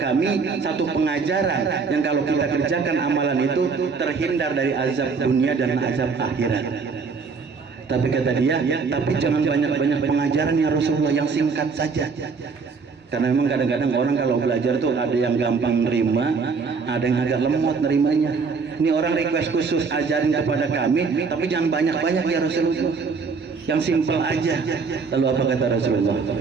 kami satu pengajaran yang kalau kita kerjakan amalan itu terhindar dari azab dunia dan azab akhirat. Tapi kata dia, tapi jangan banyak-banyak pengajaran ya Rasulullah, yang singkat saja. Karena memang kadang-kadang orang kalau belajar tuh ada yang gampang nerima, ada yang agak lemot nerimanya. Ini orang request khusus, ajarin kepada kami, tapi jangan banyak-banyak ya Rasulullah, yang simpel aja. Lalu apa kata Rasulullah?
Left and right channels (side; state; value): left; quieter; 5.0 dB